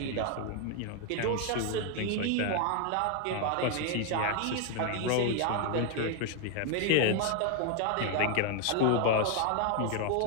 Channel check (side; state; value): both; different; correlation 0.01